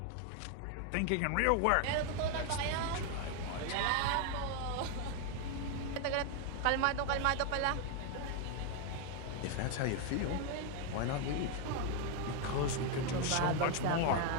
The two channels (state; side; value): different; both; correlation 0.01